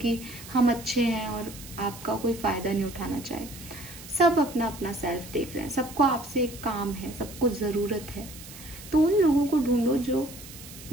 हम अच्छे हैं और आपका कोई फायदा नहीं उठाना चाहे। सब अपना अपना सेल्फ देख रहे हैं, सबको आपसे एक काम है, सबको जरूरत है। तो उन लोगों को ढूंढो जो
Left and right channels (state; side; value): noise; right; hiss, 15 dB below the sound